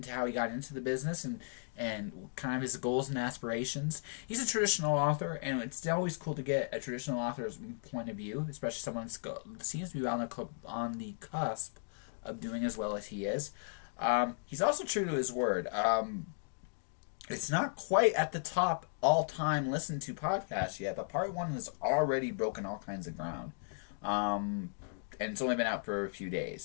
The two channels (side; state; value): right; silent; digital silence